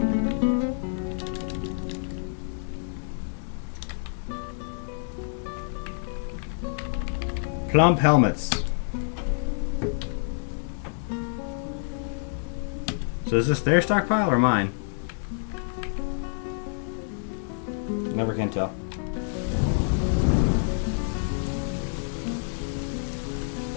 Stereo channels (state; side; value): silent; right; digital silence